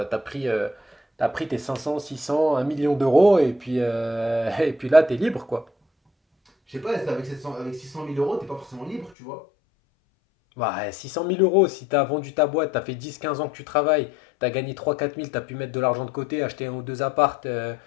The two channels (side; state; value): right; drops out; at 9.1 s